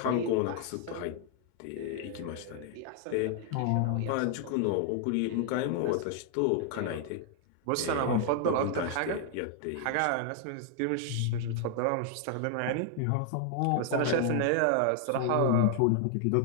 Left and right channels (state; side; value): different; both; correlation 0.00